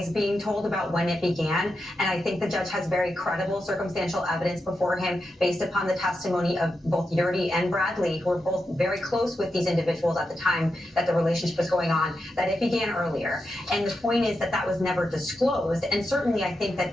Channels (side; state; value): both; normal; correlation 0.87